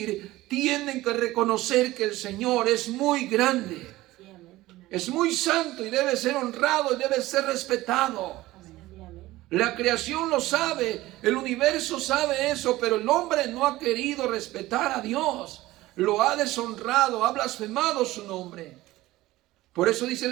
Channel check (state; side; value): quieter; left; 17.5 dB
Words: tienen que reconocer que el Señor es muy grande, es muy santo y debe ser honrado y debe ser respetado. La creación lo sabe, el universo sabe eso, pero el hombre no ha querido respetar a Dios. Lo ha deshonrado, ha blasfemado su nombre. Por eso dice